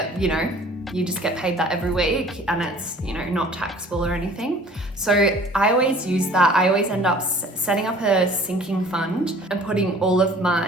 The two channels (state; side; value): normal; both; correlation 0.50